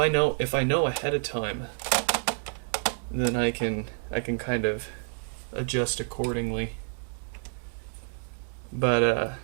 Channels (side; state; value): left; silent; 57 dB below the other